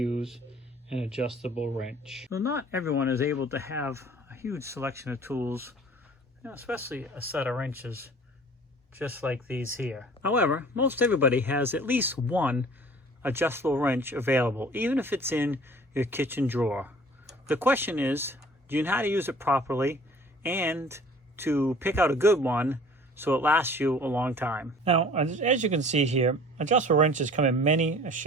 an adjustable wrench. Well, not everyone is able to have a huge selection of tools, especially a set of wrenches just like these here. However, most everybody has at least one adjustable wrench available, even if it's in your kitchen drawer. The question is, do you know how to use it properly and to pick out a good one so it lasts you a long time? Now, as you can see here, adjustable wrenches come in many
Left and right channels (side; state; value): both; normal; correlation 0.49